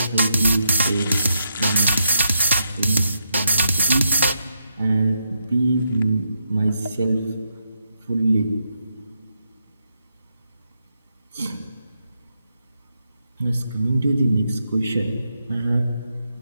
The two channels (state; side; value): inverted; both; correlation -0.81